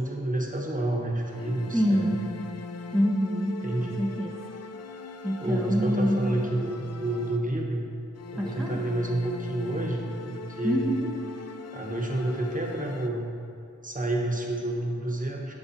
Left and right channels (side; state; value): both; normal; correlation 0.79